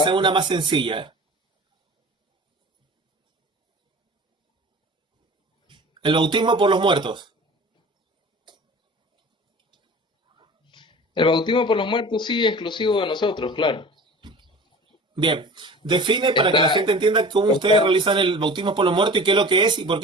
esa es una más sencilla. El bautismo por los muertos. El bautismo por los muertos sí es exclusivo de nosotros, claro. Bien. Define para que la Está, gente entienda cómo ustedes está realizan el bautismo por los muertos y qué es lo que es y por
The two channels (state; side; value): normal; both; correlation 0.39